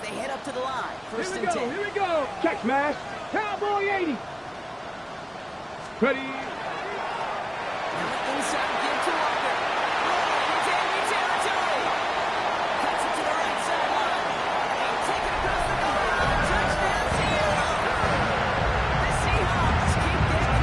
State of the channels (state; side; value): identical; both; correlation 1.00